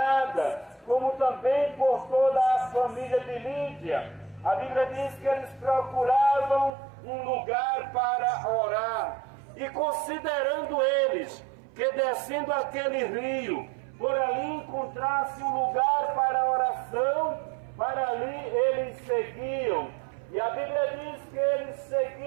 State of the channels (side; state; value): left; drops out; at 6.7 s